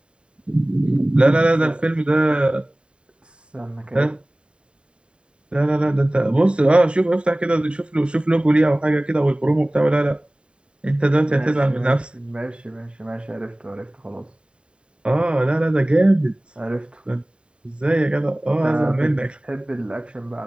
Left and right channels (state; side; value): late; left; 0.053 ms